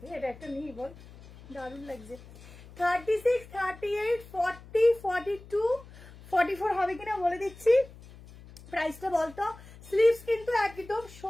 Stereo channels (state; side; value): noise; left; hum, 19 dB below the sound